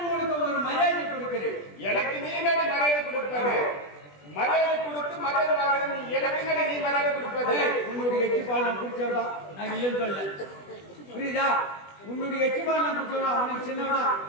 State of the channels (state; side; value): late; right; 20 ms